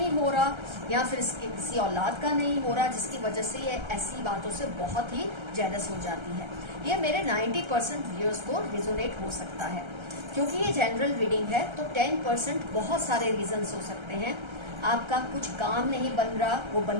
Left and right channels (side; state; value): left; late; 1.3 ms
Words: हो रहा या फिर इसके किसी औलाद का नहीं हो रहा, जिसकी वजह से ये ऐसी बातों से बहुत ही जेलस हो जाती है। ये मेरे 90% व्यूअर्स को रिजोनेट हो सकता है। क्योंकि ये जनरल रीडिंग है तो 10% बहुत सारे रीजंस हो सकते हैं। आपका कुछ काम नहीं बन रहा, वो